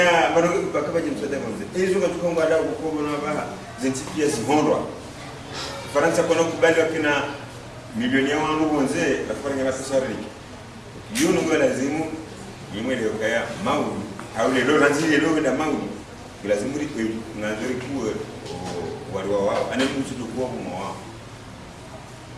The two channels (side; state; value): both; identical; correlation 1.00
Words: marogo mpaka baje msaada wangu hizo ngatuka ngwada kukobo na baha zinti pia zihondwa Faransa kwa kubali wakina milioni ya wangu bonze afanya mapesa riki yuno ngwa lazimu yimwele okaya maudi au lelo lazili lelo da maudi lazimu ri ngazuri kuwe wali wao ana mtu tukua kwa wao